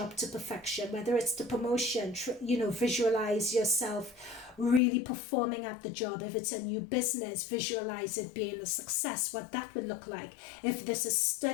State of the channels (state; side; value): drops out; right; at 4.8 s